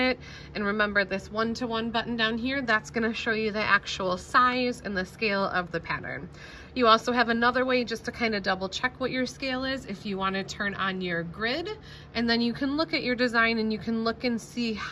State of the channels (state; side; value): identical; both; correlation 1.00